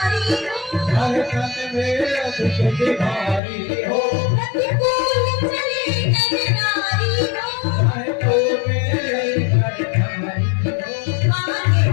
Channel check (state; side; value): drops out; right; at 3.4 s